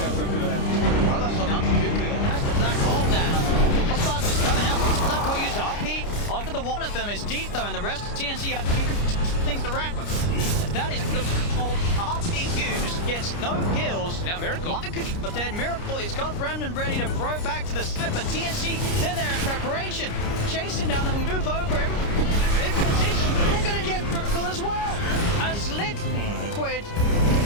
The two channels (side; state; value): right; late; 29 ms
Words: for the Cuckoo. That's the black hole down. Xbox is coming out. Black hole used RP. Onto the one of them is deep though, and the rest of TNC have things around. That is called RP used, gets no kills. Now Miracle. But then Miracle is got Remnant ready to throw back to the side, but TNC, they're there in preparation. Chasing down, they'll move over him. In position, they're gonna get Miracle as well. As Liquid,